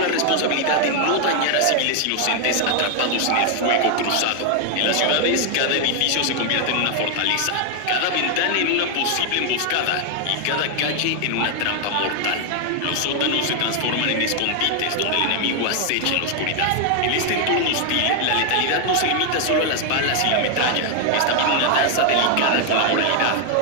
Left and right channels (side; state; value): both; different; correlation 0.00